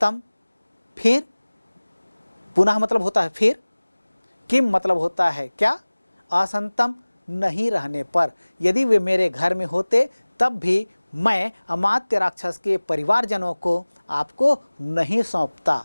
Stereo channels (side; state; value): both; inverted; correlation -1.00